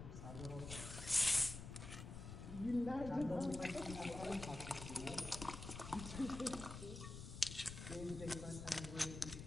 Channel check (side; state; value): left; noise; rumble, 9 dB below the sound